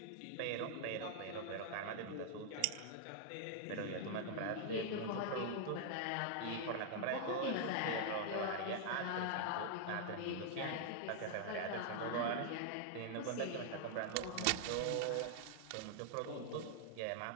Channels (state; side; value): different; both; correlation -0.01